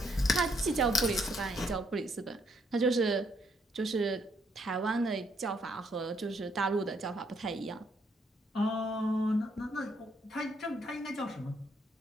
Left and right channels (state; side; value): normal; both; correlation 0.72